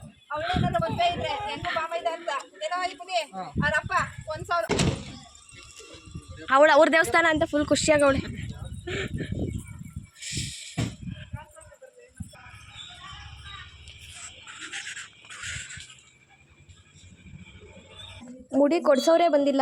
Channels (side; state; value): both; identical; correlation 1.00